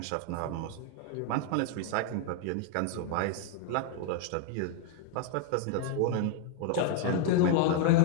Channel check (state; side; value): different; both; correlation 0.00